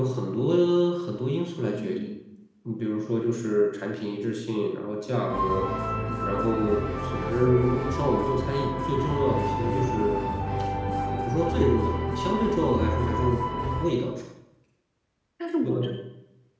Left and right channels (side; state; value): both; identical; correlation 1.00